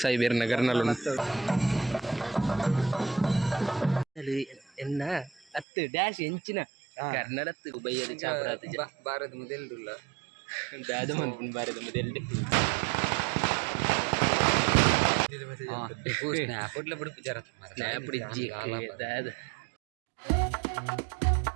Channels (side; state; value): left; drops out; at 5.7 s